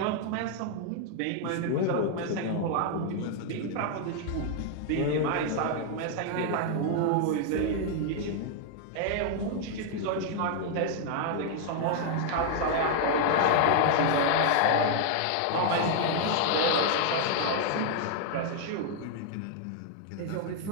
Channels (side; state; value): both; different; correlation 0.00